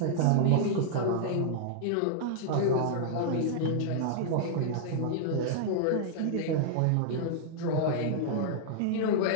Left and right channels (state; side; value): different; both; correlation -0.01